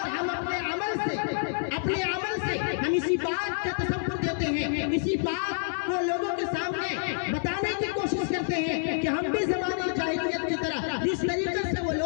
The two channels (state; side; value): silent; right; digital silence